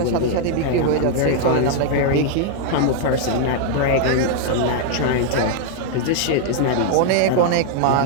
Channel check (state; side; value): different; both; correlation 0.00